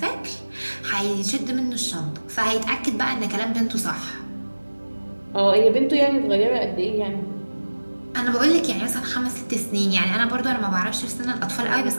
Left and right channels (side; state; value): both; inverted; correlation -1.00